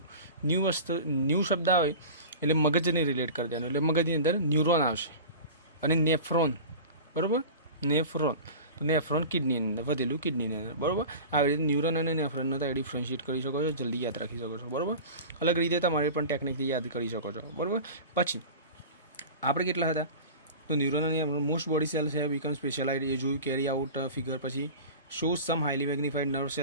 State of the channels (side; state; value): both; inverted; correlation -0.34